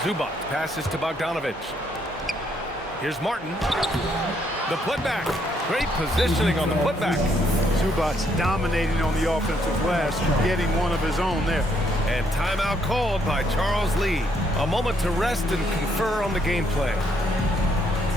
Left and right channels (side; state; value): both; normal; correlation 0.72